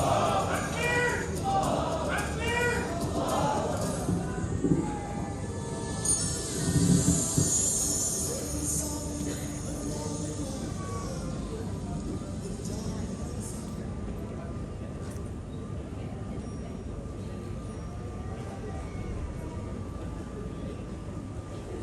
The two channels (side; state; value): both; identical; correlation 1.00